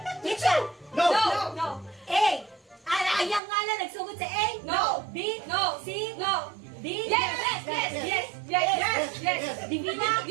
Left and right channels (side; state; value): left; drops out; at 3.4 s